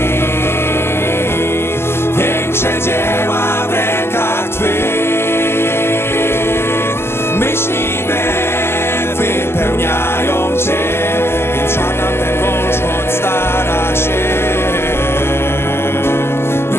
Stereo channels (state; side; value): late; right; 0.12 ms